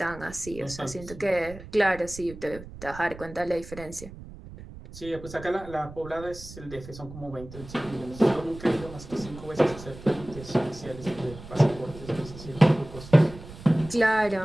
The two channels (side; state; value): right; noise; rumble, 15 dB below the sound